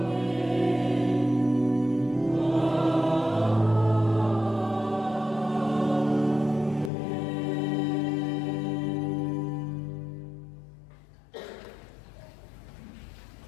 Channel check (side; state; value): right; drops out; at 6.9 s